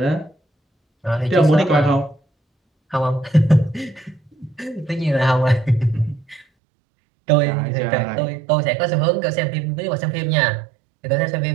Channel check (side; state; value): left; drops out; at 6.5 s